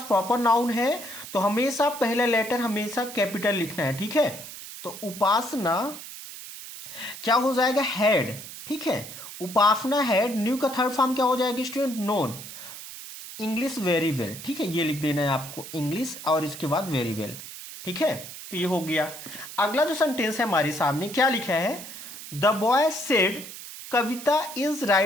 प्रॉपर नाउन है तो हमेशा पहला लेटर हमेशा कैपिटल लिखना है। ठीक है, तो उपासना क्या हो जाएगा, हैड। ठीक है, उपासना हैड, न्यू का थर्ड फॉर्म क्या हो जाएगा student, known English very well. ठीक है, ये लिख देना है आपको, इंग्लिश और इसके बाद वेरी वेल। ठीक है, तो ये हो गया। अगला जो सेंटेंस है हमारे सामने, क्या लिखा है, the boy said Kavita is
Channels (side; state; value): right; noise; hiss, 12 dB below the sound